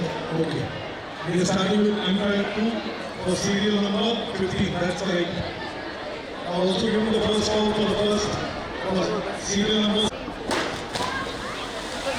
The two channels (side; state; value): both; identical; correlation 1.00